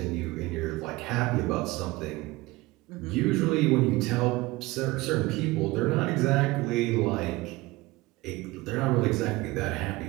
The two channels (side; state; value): left; quieter; 20.9 dB